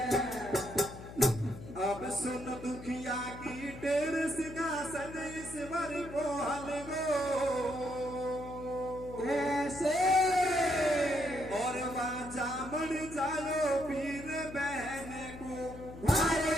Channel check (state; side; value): noise; left; hum, 13 dB below the sound